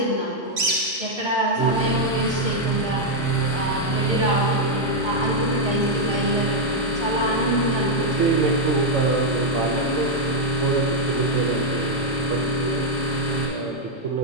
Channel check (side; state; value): both; normal; correlation -0.02